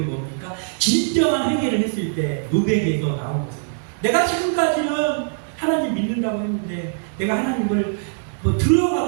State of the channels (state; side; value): silent; left; digital silence